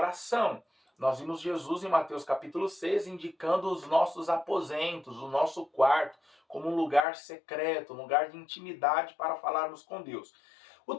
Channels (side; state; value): right; drops out; at 7.1 s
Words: Nós vimos Jesus em Mateus capítulo 6 indicando os nossos aposentos, o nosso quarto, como um lugar secreto, um lugar de intimidade para falarmos com Deus. O